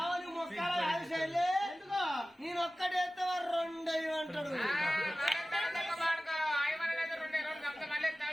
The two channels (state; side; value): normal; both; correlation 0.96